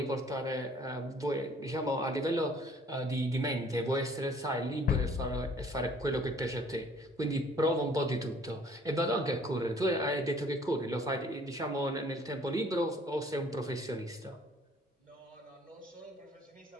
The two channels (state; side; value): normal; both; correlation 0.57